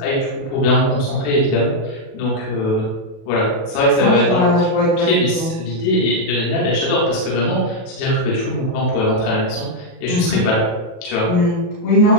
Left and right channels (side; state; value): right; late; 36 ms